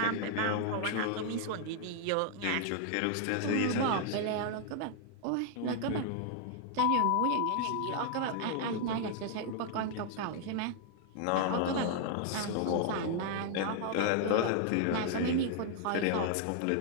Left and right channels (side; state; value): both; different; correlation 0.00